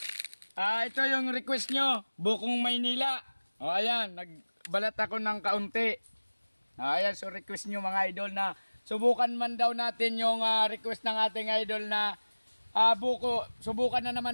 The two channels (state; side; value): inverted; both; correlation -1.00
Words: Ito yung request nyo, Bukong Maynila. O ayan, nagbalat ako ng kaunti. Ayan, so request nyo mga idol na subukan man daw natin yung request ng ating idol na buko. Subukan na